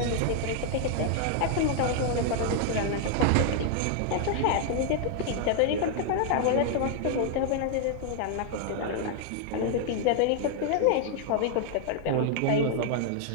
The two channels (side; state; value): both; different; correlation 0.00